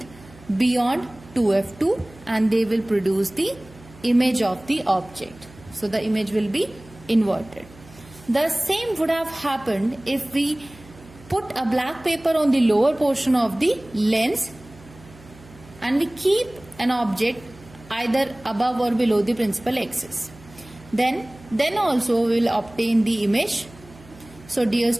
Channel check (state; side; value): noise; right; hum, 22 dB below the sound